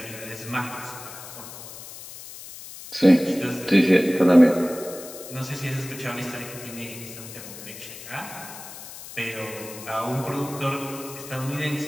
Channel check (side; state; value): left; noise; hiss, 13 dB below the sound